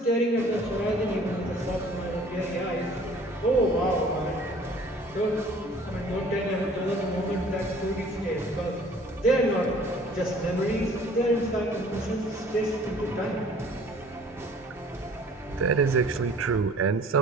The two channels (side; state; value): both; normal; correlation 0.52